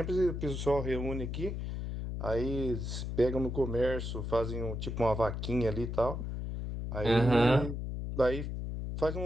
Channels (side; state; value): left; noise; hum, 4 dB below the sound